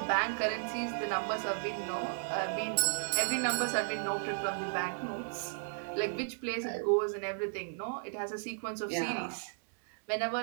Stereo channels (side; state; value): left; silent; digital silence